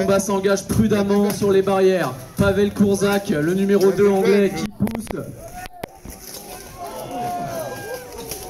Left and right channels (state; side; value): identical; both; correlation 1.00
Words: s'engage prudemment sur les barrières. Pavel Kurzak, le numéro 2 anglais qui pousse.